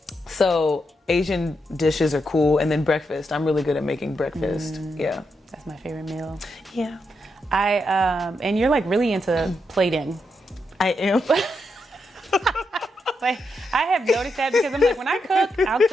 So Asian dishes are cool, and then breakfast. I'm really good at making breakfast. Yeah, That's my favorite meal. yeah, And you're like really into plating. I am. Like, I have noticed that because I'm like, when I cook, I'll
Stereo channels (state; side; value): normal; both; correlation 0.83